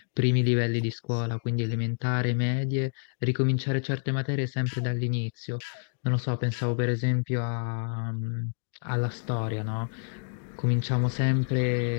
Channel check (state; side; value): silent; right; digital silence